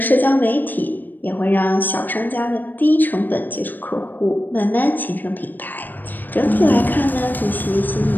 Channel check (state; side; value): late; right; 0.089 ms